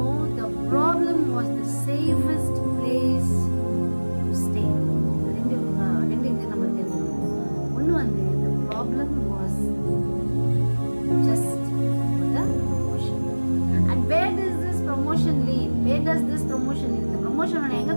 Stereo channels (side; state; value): both; inverted; correlation -1.00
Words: the problem was the safest place to stay. ரெண்டு இது நம்ம தெரிஞ்சுக்கணும். ஒன்று வந்து the problem was just for the promotion. And where does this promotion lead? இந்த ப்ரொமோஷன் உன்னை எங்கே